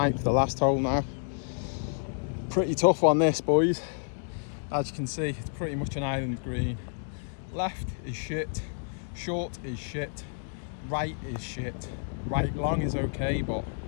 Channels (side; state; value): right; silent; digital silence